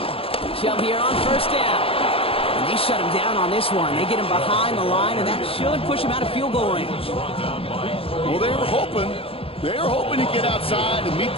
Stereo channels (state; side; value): late; right; 0.27 ms